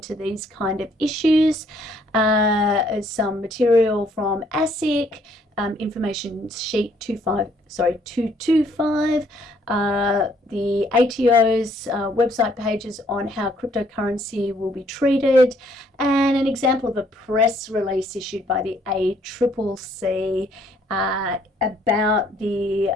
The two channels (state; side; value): normal; both; correlation 0.65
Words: these kind of issues. Some material from ASIC, information sheet 225, the ATO's website pages on how cryptocurrency will be treated, and an example of a press release issued by the ACCC about the